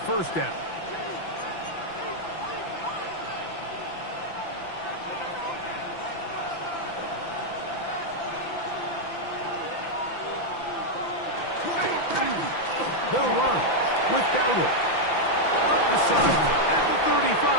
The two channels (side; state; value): right; late; 5.9 ms